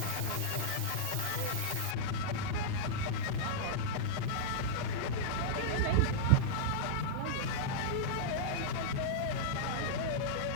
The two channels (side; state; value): both; different; correlation -0.02